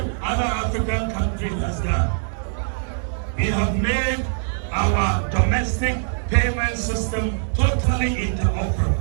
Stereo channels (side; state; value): left; silent; digital silence